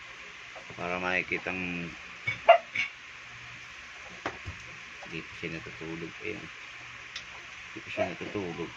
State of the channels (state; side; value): identical; both; correlation 1.00